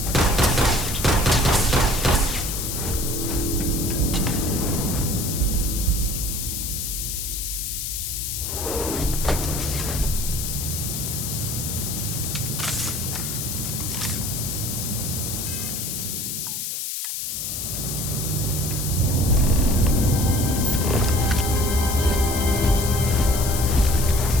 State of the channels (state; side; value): noise; left; hiss, 3 dB below the sound